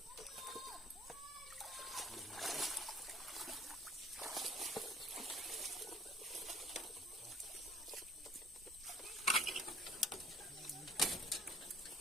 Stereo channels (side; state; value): both; normal; correlation 0.54